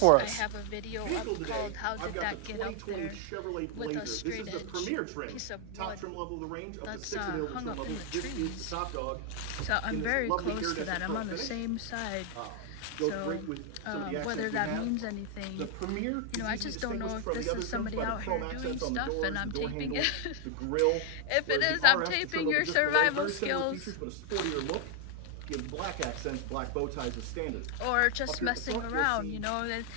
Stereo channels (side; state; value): both; different; correlation 0.00